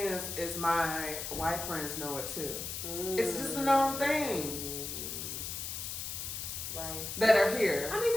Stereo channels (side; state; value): left; noise; hiss, 5 dB below the sound